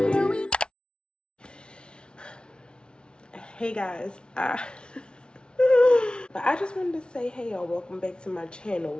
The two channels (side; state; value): right; late; 0.056 ms